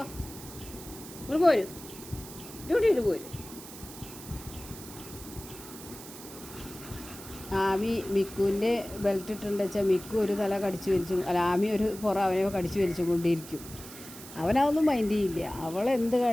ഇവിടെ പോരും, ഡ്യൂട്ടിയിട്ട് പോരും. ആമി മിക്കുവിൻ്റെ ബെൽറ്റ് ഇട്ടുണ്ട് വെച്ചാൽ മിക്കു ഒരു തല കടിച്ചു വലിച്ചു, അല്ല ആമി ഒരു അവനെ കടിച്ചു വലിച്ചു കൊണ്ടിരിക്കും. അവനതൊന്നും മൈൻഡ് ചെയ്യില്ല. അവളെന്ത്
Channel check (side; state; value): right; noise; hiss, 15 dB below the sound